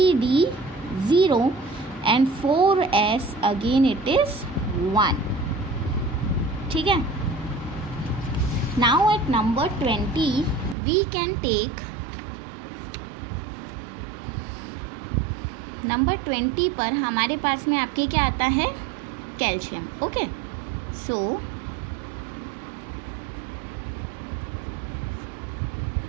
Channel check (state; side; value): drops out; left; at 10.8 s